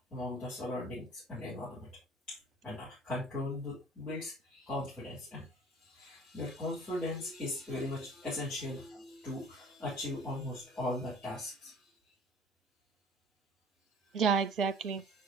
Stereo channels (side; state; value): both; normal; correlation 0.48